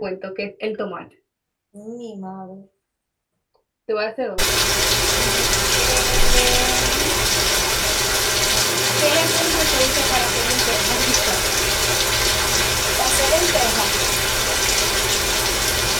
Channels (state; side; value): identical; both; correlation 1.00